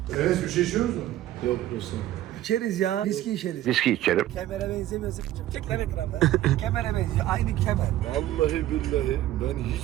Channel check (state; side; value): quieter; left; 13.9 dB